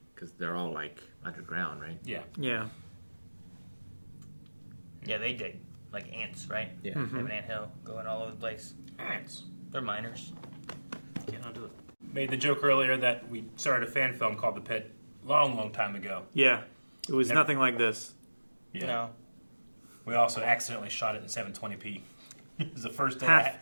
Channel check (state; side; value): inverted; both; correlation -1.00